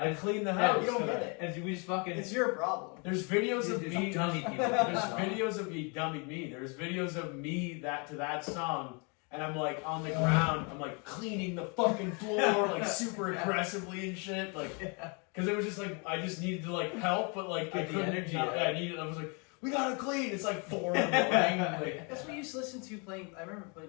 cleaned the house. You don't get it. And we just fucking. It's your problem. There's videos of There's me. dummy people. There's videos of me dumbing me. There's videos of me to that song. And I'm like on the ground, I'm like cleaning the fucking floor, like super aggressively and shit, like, because it was just like I just needed to like help, but like I couldn't. Energy. I was like, we gotta clean. It's like 4 in the morning. Like, that's what we used to listen to playing. I remember playing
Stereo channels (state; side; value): quieter; right; 33.8 dB